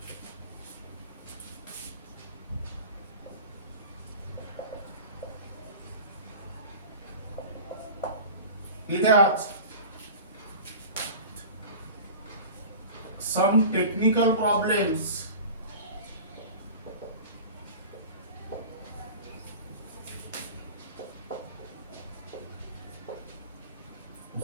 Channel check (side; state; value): both; inverted; correlation -0.37